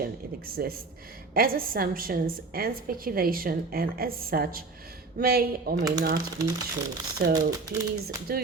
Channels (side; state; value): left; quieter; 3.9 dB